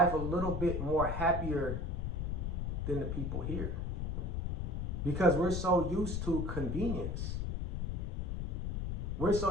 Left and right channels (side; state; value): left; noise; rumble, 1 dB below the sound